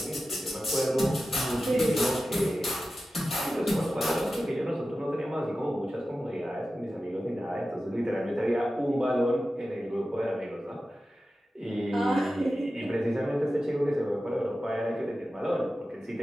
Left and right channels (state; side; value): normal; both; correlation 0.94